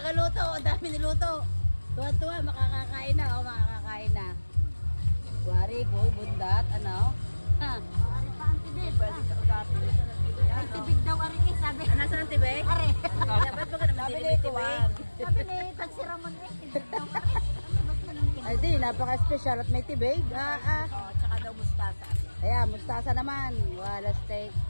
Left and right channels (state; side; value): inverted; both; correlation -1.00